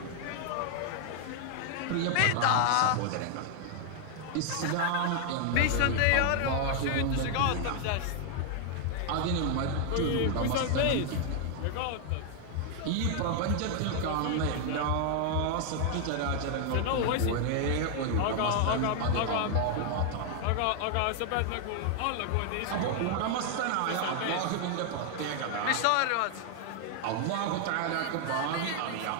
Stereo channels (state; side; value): different; both; correlation 0.00